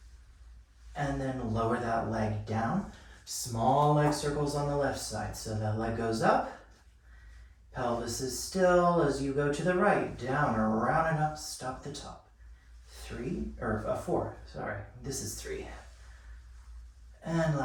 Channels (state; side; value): identical; both; correlation 1.00